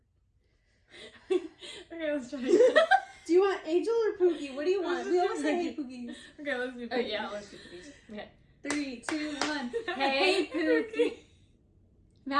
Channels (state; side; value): identical; both; correlation 1.00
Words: Angel. Okay, let's try it. Do you want Angel or Pookie? What do you want? We always say hey Pookies. Okay, let's do Pookies. Oh, yeah, let's do Pookies. Okay. 3, 2, 1. Hey, Pookie.